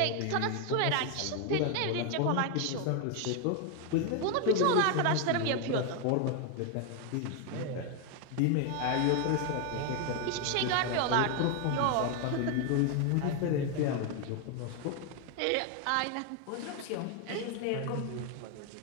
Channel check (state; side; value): different; both; correlation 0.01